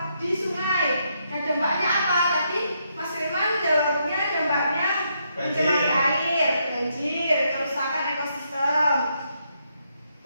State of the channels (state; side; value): inverted; both; correlation -0.77